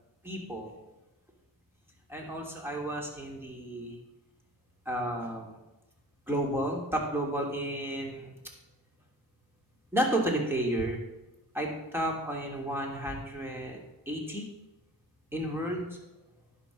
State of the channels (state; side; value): normal; both; correlation 0.46